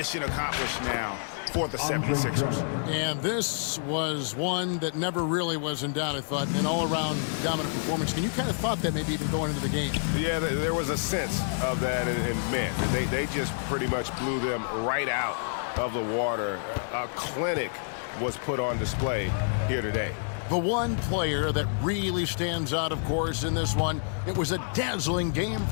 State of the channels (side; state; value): right; silent; digital silence